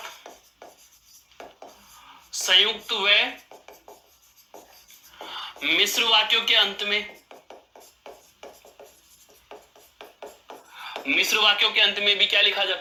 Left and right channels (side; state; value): both; identical; correlation 1.00